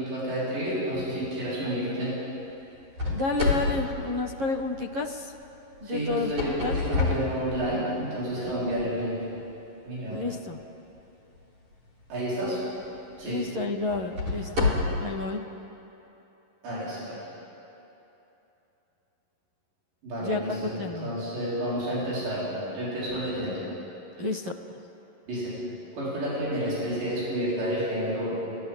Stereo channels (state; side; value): late; left; 11 ms